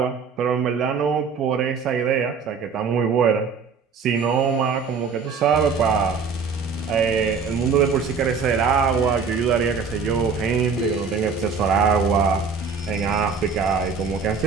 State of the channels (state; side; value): quieter; left; 5.4 dB